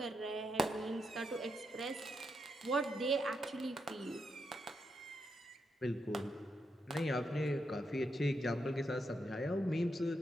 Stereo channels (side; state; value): both; normal; correlation 0.82